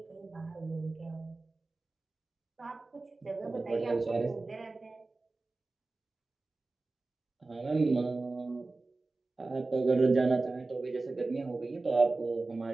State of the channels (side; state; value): left; quieter; 3.4 dB